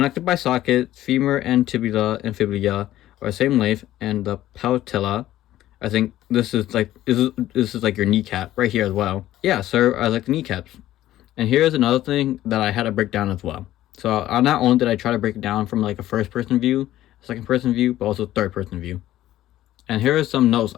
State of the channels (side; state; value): right; quieter; 14.0 dB